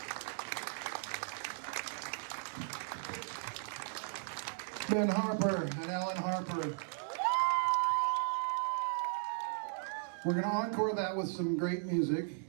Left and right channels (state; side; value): silent; left; digital silence